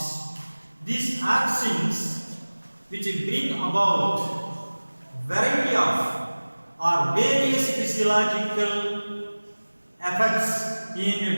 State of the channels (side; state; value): both; inverted; correlation -1.00